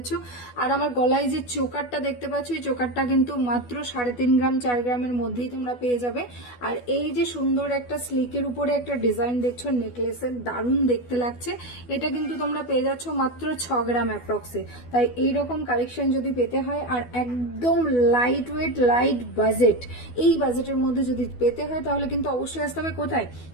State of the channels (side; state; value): right; late; 12 ms